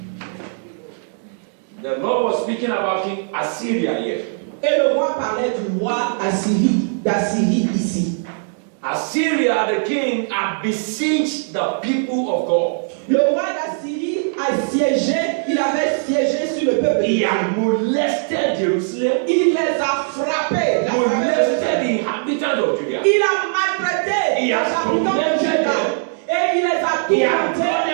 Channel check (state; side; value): silent; left; digital silence